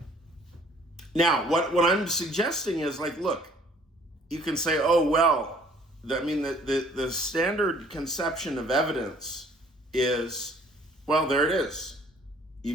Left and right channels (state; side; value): normal; both; correlation 0.57